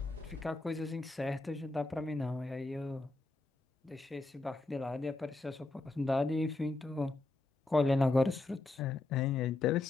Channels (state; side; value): quieter; right; 3.1 dB